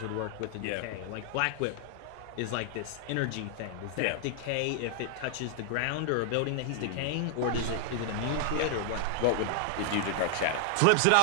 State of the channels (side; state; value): both; different; correlation 0.00